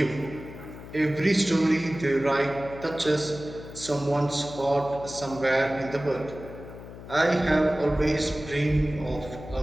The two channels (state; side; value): noise; left; hum, 14 dB below the sound